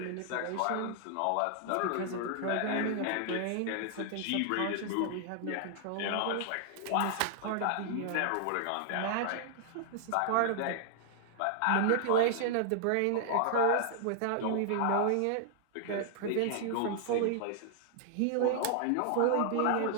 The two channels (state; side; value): different; both; correlation -0.01